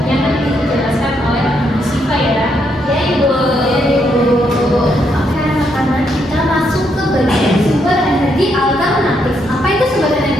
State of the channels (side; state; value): both; normal; correlation 0.77